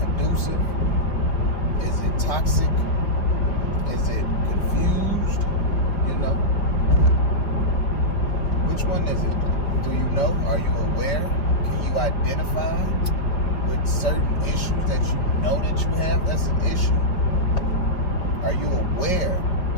Is it toxic? Is it confused? You know? Which one is it? Do you know? Are you aware? Can you identify with certain issues that you know that you have that's an issue? Are you aware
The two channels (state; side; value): late; right; 5.0 ms